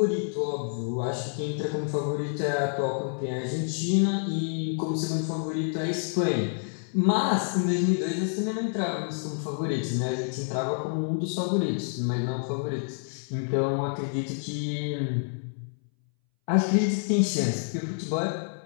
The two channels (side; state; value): right; silent; 59 dB below the other